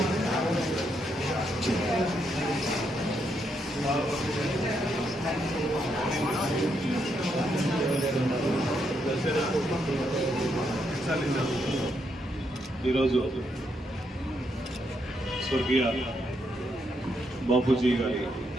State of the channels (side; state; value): both; normal; correlation 0.78